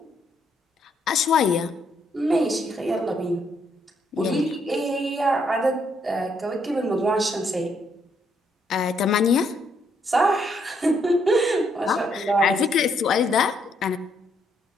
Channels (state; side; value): normal; both; correlation 0.73